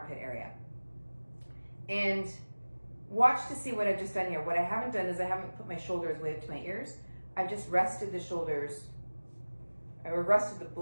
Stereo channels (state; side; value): inverted; both; correlation -1.00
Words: area. And watch to see what I've just done here. What I haven't done is I haven't put my shoulders way up to my ears. I've just rested the shoulders, or rested